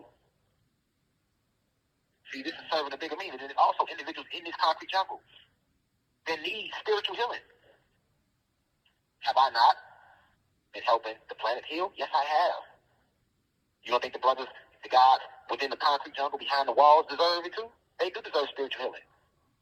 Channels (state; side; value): identical; both; correlation 1.00